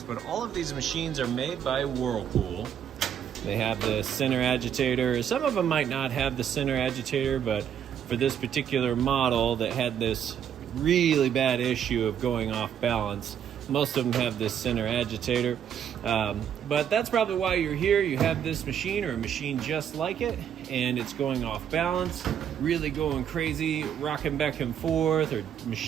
but all of these machines are made by Whirlpool. They have the center agitator. Some of them might not have the center agitator, but for this particular model that had this really bad issue of going off balance, most of them have this center agitator. But that's probably why you're here. You have this machine or a machine just like it, and it's going off balance, really going crazy, rocking back and forth, or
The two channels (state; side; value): quieter; left; 9.0 dB